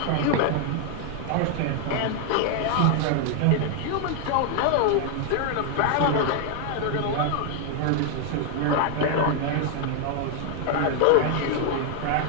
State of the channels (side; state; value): both; different; correlation 0.00